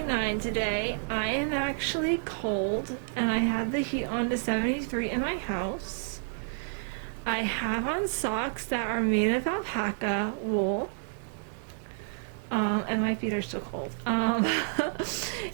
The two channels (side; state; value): left; silent; 58 dB below the other